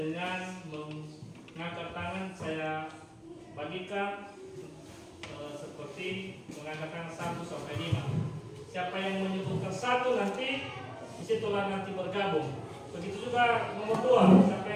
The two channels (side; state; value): both; identical; correlation 1.00